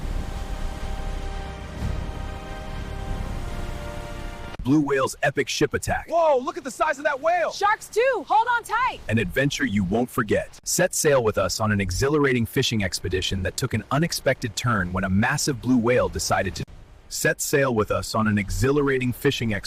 Blue whale's epic ship attack. Whoa, look at the size of that whale! Sharks too! Hold on tight! An adventure you won't forget. Set sail with us on an exhilarating fishing expedition that took an unexpected turn when a massive blue whale decided to. Set sail with us on an exhilarating fishing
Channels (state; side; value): identical; both; correlation 1.00